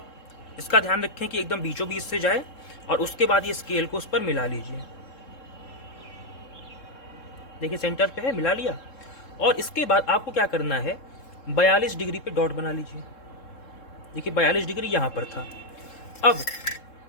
इसका ध्यान रखें कि एकदम बीचों बीच से जाए, और उसके बाद ये स्केल को उस पर मिला लीजिए। देखिए सेंटर पे है, मिला लिया। और इसके बाद आपको क्या करना है, 42 डिग्री पे डॉट बना लीजिए। देखिए 42 डिग्री यहाँ पर था। अब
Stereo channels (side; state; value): right; late; 3.7 ms